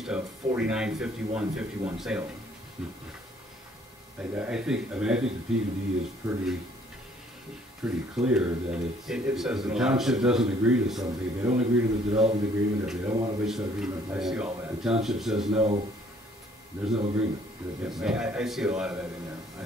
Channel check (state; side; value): normal; both; correlation 0.61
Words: a 49-51-51 Salem. I think the PUD is pretty clear that It says if in the a lot of township places. doesn't agree to something, if they don't agree to the development agreement, if they don't want a wastewater treatment I see plant, all that. the township says no, there's no agreement. Yes, It's no. I see a lot of that in